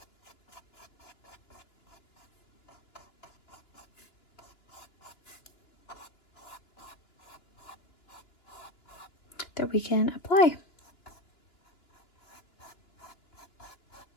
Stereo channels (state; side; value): late; right; 2.9 ms